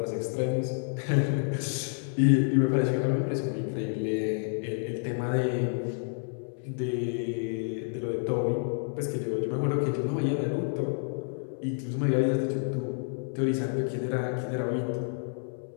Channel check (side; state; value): right; silent; 57 dB below the other